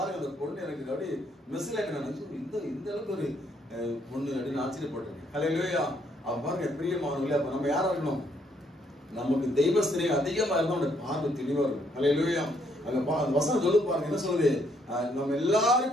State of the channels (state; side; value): normal; both; correlation 0.70